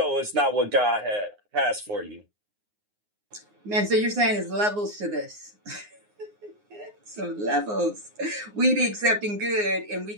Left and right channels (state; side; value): late; left; 9.6 ms